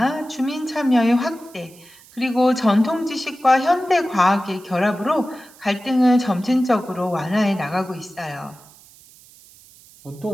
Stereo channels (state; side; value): noise; right; hiss, 25 dB below the sound